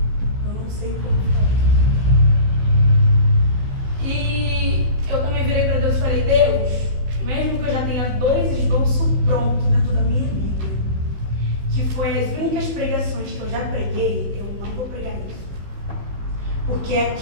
Eu não sei o que eu vou falar. E eu também virei para Deus e falei, Deus, mesmo que eu já tenha 2 esboços prontos dentro da minha vida, que foi as únicas pregações que eu já preguei, eu não vou pregar isso. Porque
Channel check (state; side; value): late; left; 15 ms